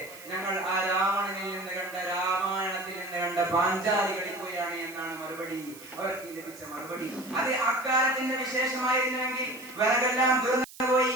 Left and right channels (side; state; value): right; noise; hiss, 18 dB below the sound